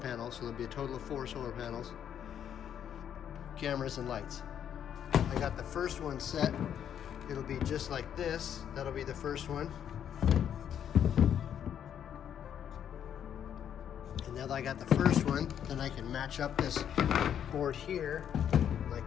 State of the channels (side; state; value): right; quieter; 9.2 dB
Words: so there'll be a total of 4 solar panels, cameras and lights. I got the first one set. It'll be just like this. That'll be the first one. And now that I got the first one, then I can match up this board here